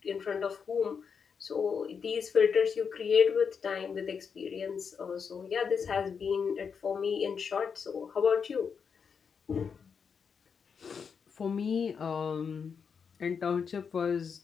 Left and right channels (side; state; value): right; quieter; 6.3 dB